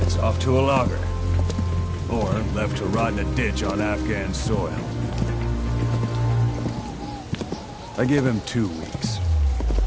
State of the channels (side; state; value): both; identical; correlation 1.00